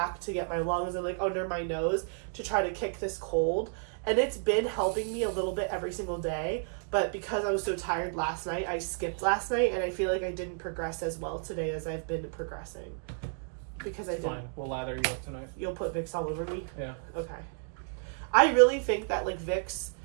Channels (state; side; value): silent; left; 57 dB below the other